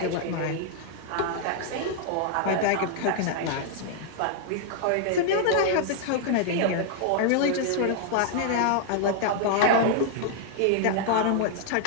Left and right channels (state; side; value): different; both; correlation -0.01